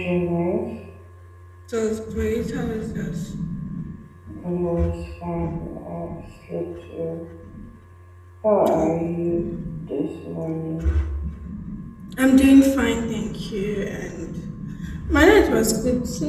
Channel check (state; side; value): identical; both; correlation 1.00